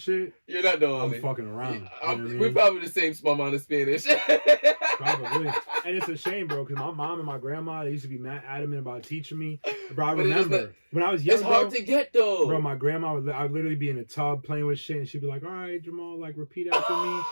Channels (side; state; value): both; inverted; correlation -1.00